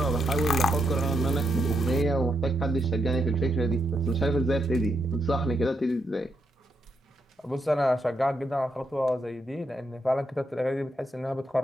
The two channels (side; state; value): both; normal; correlation 0.80